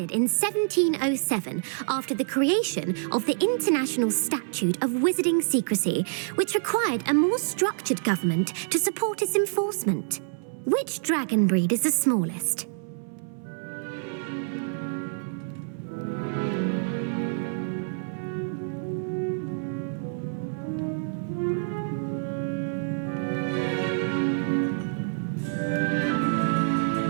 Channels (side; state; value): left; silent; 60 dB below the other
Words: in 1707 after the creation of the International Statute of Wizarding Secrecy, which required a more structured government to support its enforcement. Which dragon breed is the smallest?